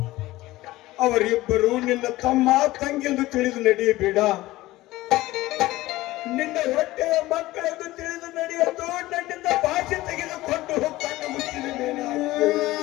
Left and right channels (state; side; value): quieter; right; 17.7 dB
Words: ಅವರಿಬ್ಬರು ನಿನ್ನ ತಮ್ಮ ತಂಗಿಯೆಂದು ತಿಳಿದು ನಡೆಯಬೇಡ, ನಿನ್ನ ಹೊಟ್ಟೆಯ ಮಕ್ಕಳೆಂದು ತಿಳಿದು ನಡೆಯಲು ನನ್ನಿಂದ ಭಾಷೆ ತೆಗೆದುಕೊಂಡು ಕಣ್ಣು ಮುಚ್ಚಿದೆ.